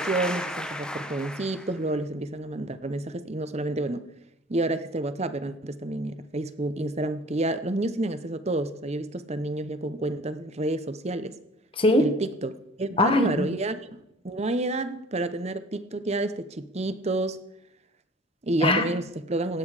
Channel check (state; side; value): normal; both; correlation 0.47